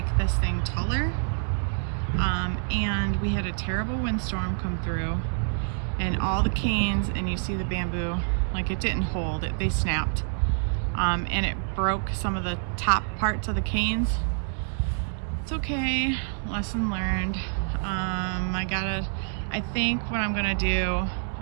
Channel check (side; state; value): left; silent; digital silence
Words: this thing taller, and we had a terrible windstorm come through, and all the canes, and you see the bamboo, like it didn't hold it, they snapped, and it broke some of the top parts of the canes. It's okay, lesson learned. I think what I'm gonna do